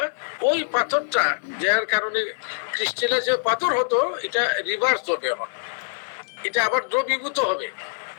ওই পাথরটা, যার কারণে ক্রিস্টালাইজ পাথর হতো, এটা রিভার্স হবে। এখন এটা আবার দ্রবীভূত হবে।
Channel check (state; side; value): silent; right; digital silence